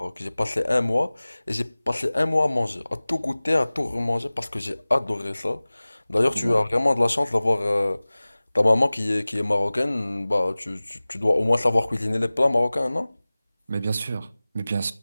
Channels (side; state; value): both; inverted; correlation -0.99